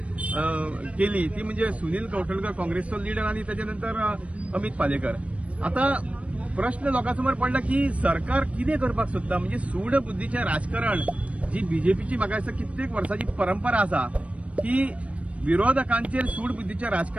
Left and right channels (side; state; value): left; late; 0.064 ms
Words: केली ती म्हणजे सुनील कौठणकर काँग्रेसचो लीडर आणि त्याच्यानंतर अमित पालेकर। आता प्रश्न लोकांसमोर पडला की सरकार कितें करपाक सोदता, म्हणजे सूड बुद्धीचें राजकारण जी बीजेपीची म्हाका दिसता कित्येक वर्सांची परंपरा आसा की विरोधकांचेर सूड बुद्धीचें